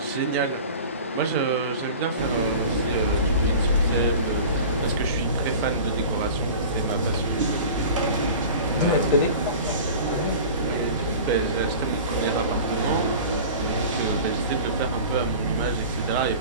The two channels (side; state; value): both; inverted; correlation -0.38